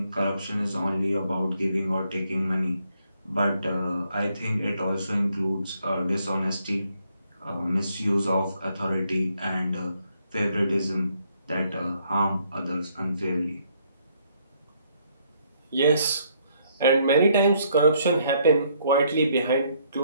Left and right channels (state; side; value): inverted; both; correlation -0.70